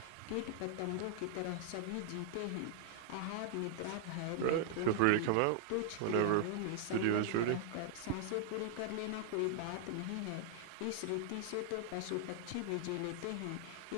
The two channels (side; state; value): both; different; correlation 0.00